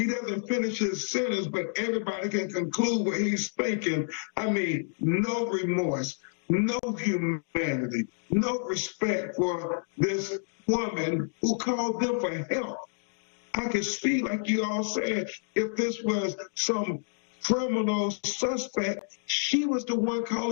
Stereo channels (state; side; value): silent; right; digital silence